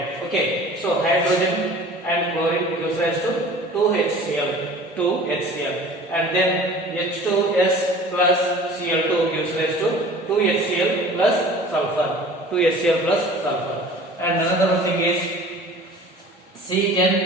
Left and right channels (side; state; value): both; normal; correlation 0.44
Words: Okay, so hydrogen and chlorine gives rise to 2HCl, and then H2S plus Cl2 gives rise to 2HCl plus sulfur. And another thing is